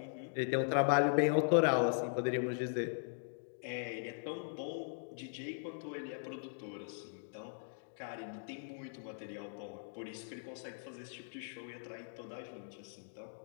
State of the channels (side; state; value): right; silent; digital silence